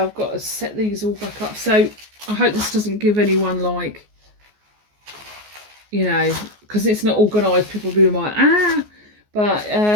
I've got to set these all back up. So I hope this doesn't give anyone, like, you know, because it's not organised, people will be like, ah. But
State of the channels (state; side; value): late; left; 14 ms